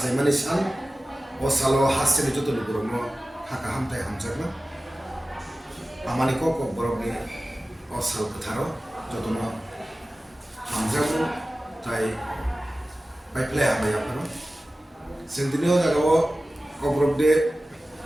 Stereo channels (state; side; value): normal; both; correlation 0.96